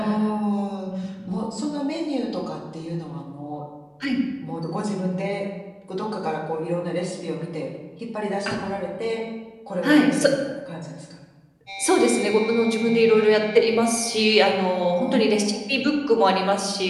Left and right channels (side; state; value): both; identical; correlation 1.00